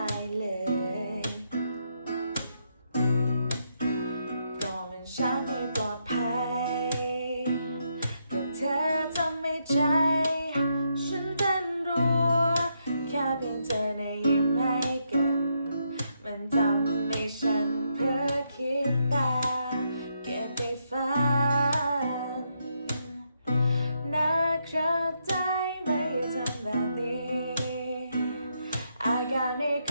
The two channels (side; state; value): both; inverted; correlation -0.79